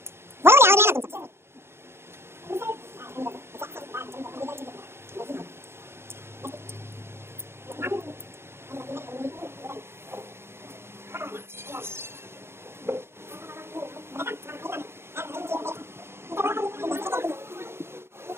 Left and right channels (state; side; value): late; left; 0.12 ms